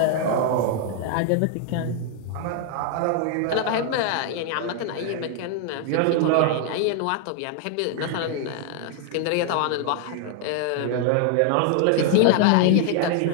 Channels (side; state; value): both; different; correlation 0.00